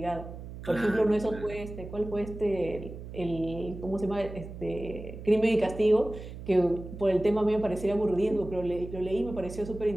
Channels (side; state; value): right; noise; hum, 11 dB below the sound